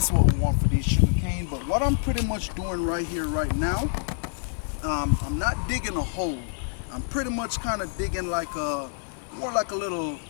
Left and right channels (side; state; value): right; silent; digital silence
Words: what we want for these sugar cane. But what I'm pretty much doing right here right now, I'm not digging a hole. I'm pretty much kind of digging like more like a little